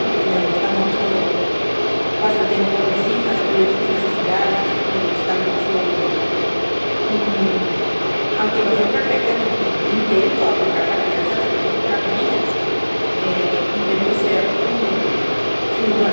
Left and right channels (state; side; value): inverted; both; correlation -1.00